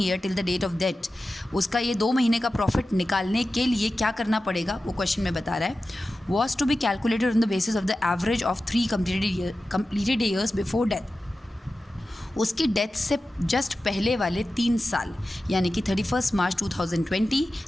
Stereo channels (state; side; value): normal; both; correlation 0.94